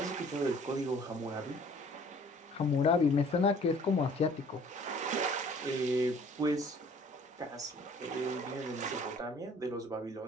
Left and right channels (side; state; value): both; normal; correlation 0.54